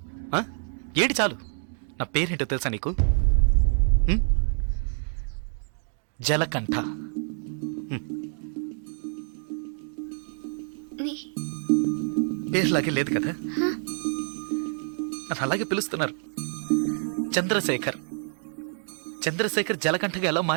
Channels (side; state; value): left; silent; 58 dB below the other